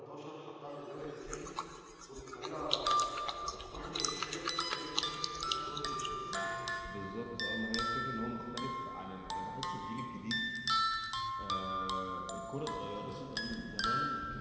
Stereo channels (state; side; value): identical; both; correlation 1.00